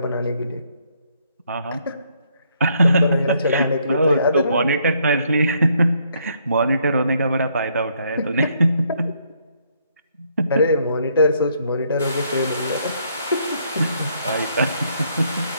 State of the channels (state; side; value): inverted; both; correlation -0.71